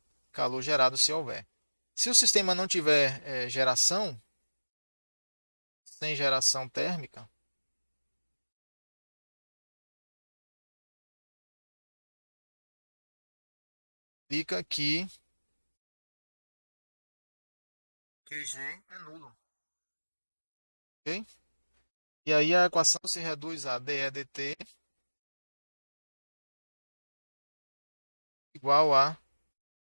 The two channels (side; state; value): both; inverted; correlation -1.00